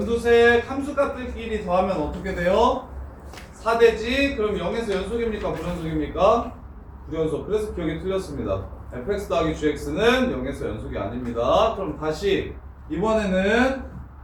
함수값들끼리 더하면 어떻게 돼요? 4되지. 그럼 0에서 연속입니까? 불연속입니까? 불연속. 그래서 기억이 틀렸습니다. fx 더하기 gx는 0에서 연속이 아닙니다. 그럼 다시 이번에는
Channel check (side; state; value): both; identical; correlation 1.00